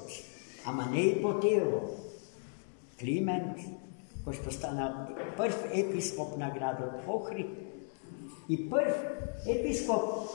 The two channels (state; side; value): silent; right; 54 dB below the other